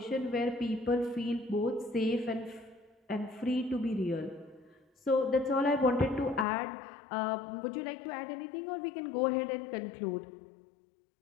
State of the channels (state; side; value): drops out; right; at 6.5 s